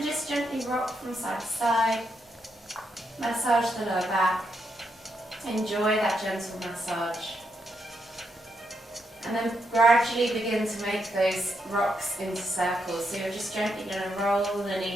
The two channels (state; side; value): normal; both; correlation 0.80